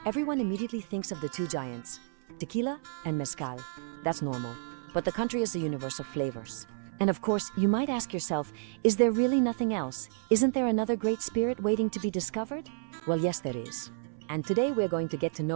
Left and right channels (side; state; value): left; silent; 57 dB below the other